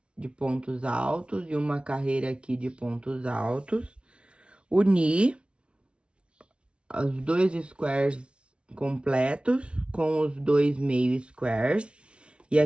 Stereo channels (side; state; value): left; late; 0.058 ms